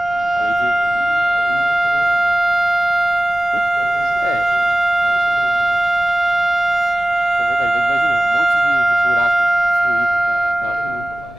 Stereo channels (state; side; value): noise; left; rumble, 22 dB below the sound